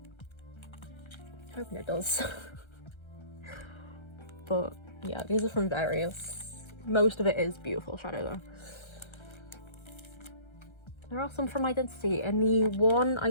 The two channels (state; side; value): late; right; 1.3 ms